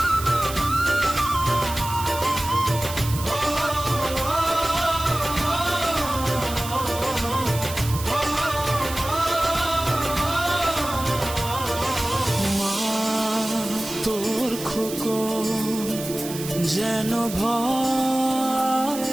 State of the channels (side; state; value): right; noise; hiss, 10 dB below the sound